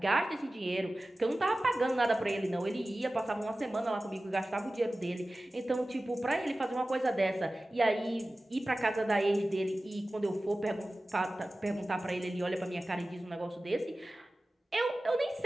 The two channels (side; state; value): both; normal; correlation 0.96